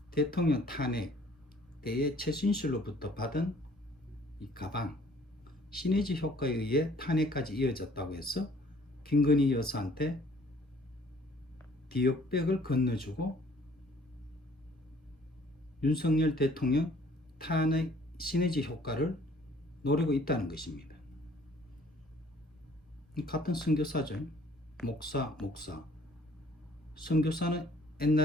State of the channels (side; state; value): both; normal; correlation 0.57